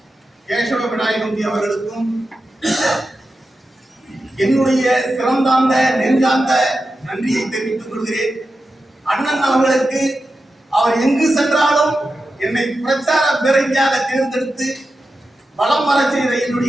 கேசவ விநாயகம்பி அவர்களுக்கும் என்னுடைய சிறந்தாந்த நெஞ்சார்ந்த நன்றியை தெரிவித்துக் கொள்கிறேன். அண்ணன் அவர்களுக்கு அவர் எங்கு சென்றாலும் என்னை பிரச்சார பேரணியாக தேர்ந்தெடுத்து வலம் வர செய்த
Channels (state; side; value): normal; both; correlation 0.91